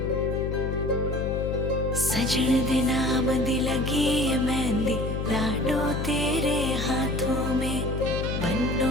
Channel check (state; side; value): noise; left; hum, 2 dB below the sound